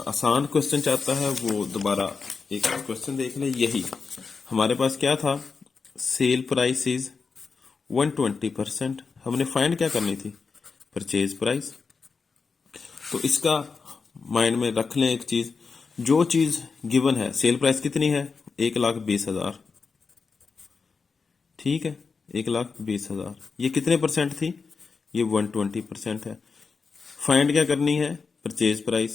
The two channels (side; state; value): right; quieter; 4.9 dB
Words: आसान क्वेश्चन चाहता है, वो दोबारा एक क्वेश्चन देख ले। यही हमारे पास क्या था, सेल प्राइस इज 120%, हमने फाइंड क्या करनी थी, परचेज प्राइस। तो इसका माइंड में रख लें एक चीज, जो चीज गिवन है, सेल प्राइस कितनी है 1,20,000, ठीक है, 1,20,000। ये कितने परसेंट थी, ये 120% है। फाइंड क्या करनी है, परचेज